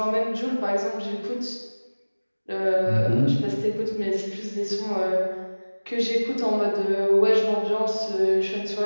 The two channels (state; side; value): inverted; both; correlation -1.00